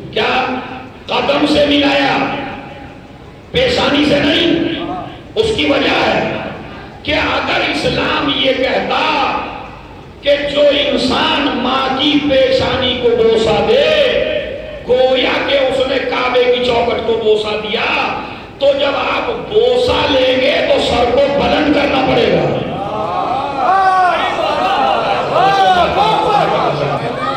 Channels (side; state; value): both; identical; correlation 1.00